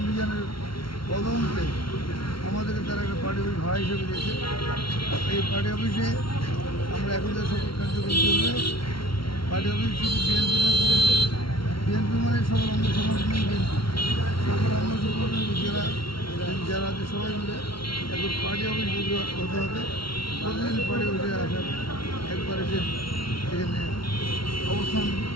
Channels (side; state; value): right; late; 0.74 ms